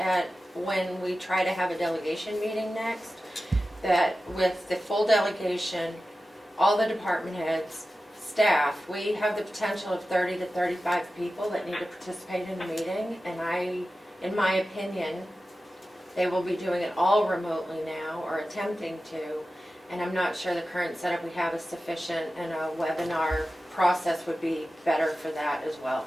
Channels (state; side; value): normal; both; correlation 0.94